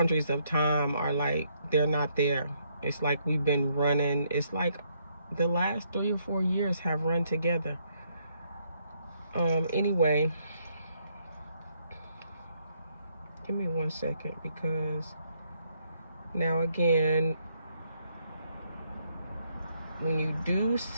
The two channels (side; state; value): both; inverted; correlation -0.73